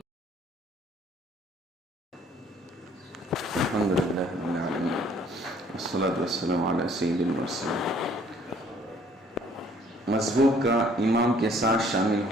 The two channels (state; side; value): normal; both; correlation 0.59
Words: الحمدللہ رب العالمین والصلاة والسلام علی سید المرسلین۔ مذہب کا امام کے ساتھ شامل